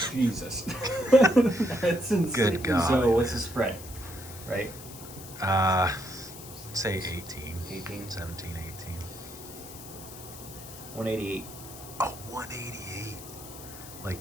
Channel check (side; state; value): left; noise; hiss, 15 dB below the sound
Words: Jesus. That's insane. Good God. So what's the spread? right? Say 18. 18. 17, 18. 188. Oh, 188. Like,